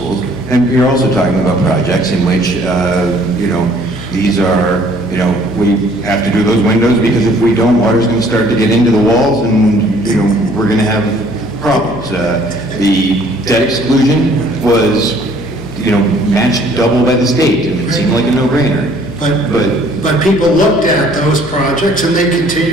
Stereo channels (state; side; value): noise; left; hum, 15 dB below the sound